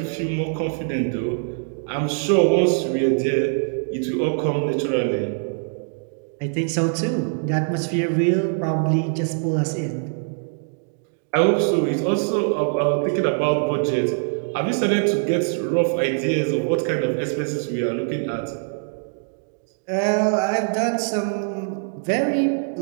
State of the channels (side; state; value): left; silent; digital silence